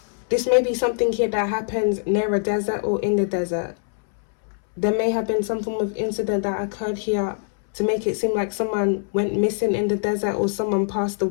This may be something here that happens near a desert or in the desert. There may have been some form of incident that occurred here to make it seem like someone went missing in the desert or someone passed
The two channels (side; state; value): right; silent; 63 dB below the other